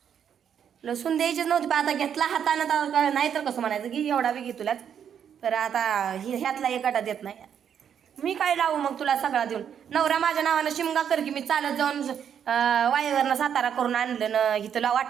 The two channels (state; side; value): quieter; left; 8.4 dB